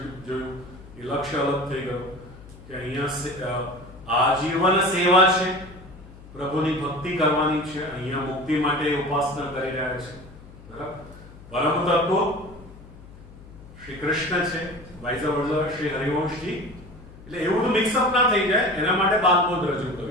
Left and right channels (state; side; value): noise; left; hum, 19 dB below the sound